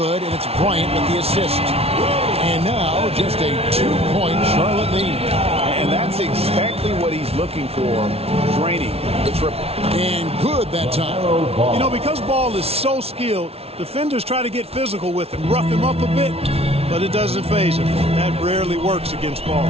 and it's Bryant with the assist. And now just a 2-point Charlotte lead. And that's exactly what he's looking for, draining the triple. And good that time. You know, because Ball is so skilled, defenders try to get physical with him, rough him up a bit, but it doesn't faze him. That rarely works against Ball.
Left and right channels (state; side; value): late; left; 0.30 ms